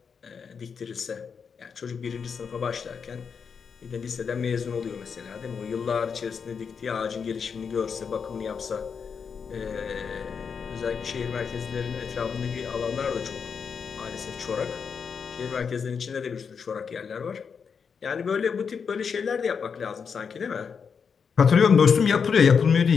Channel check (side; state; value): right; quieter; 6.2 dB